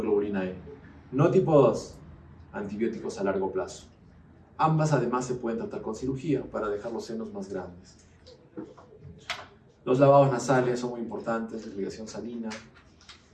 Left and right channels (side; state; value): both; identical; correlation 1.00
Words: E. No tipo 2, antibióticos a largo plazo. Ambas además se pueden tratar con cirugía para dejar los senos más grandes. Los lavados nasales son muy importantes, irrigación salina.